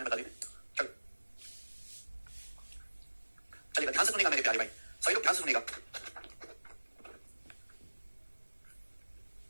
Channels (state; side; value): inverted; both; correlation -1.00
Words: बता दीजिए, चलो चलिएगा, ध्यान से सुनेगा मेरे प्यारे भाई, सभी लोग ध्यान से सुनेगा।